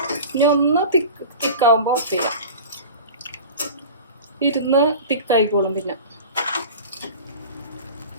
ഇനി ഒന്ന് തിക്കാവുമ്പോൾ ഓഫ് ചെയ്യാം. ഇരുന്ന് തിക്കായിക്കോളും. പിന്നെ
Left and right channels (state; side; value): inverted; both; correlation -0.36